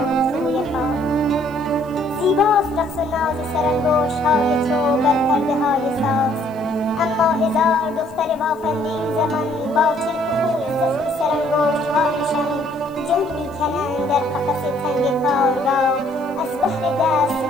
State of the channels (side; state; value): right; noise; hiss, 28 dB below the sound